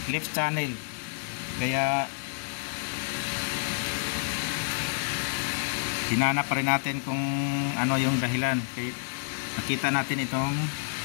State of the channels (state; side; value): silent; right; digital silence